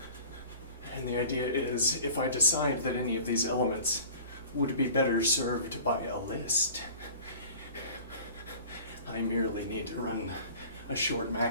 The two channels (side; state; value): both; inverted; correlation -0.43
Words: And the idea is, if I decide that any of these elements would be better served by a list, I merely need to run a short